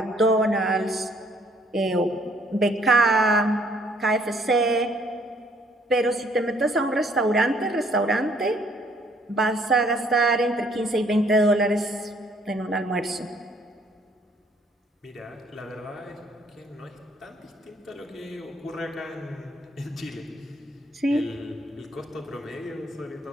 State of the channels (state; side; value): normal; both; correlation 0.64